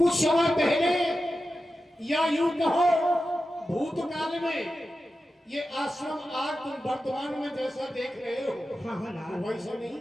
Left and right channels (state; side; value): normal; both; correlation 0.92